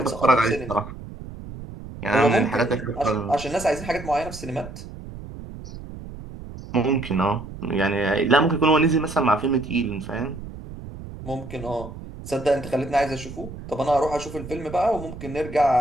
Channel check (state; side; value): noise; right; rumble, 12 dB below the sound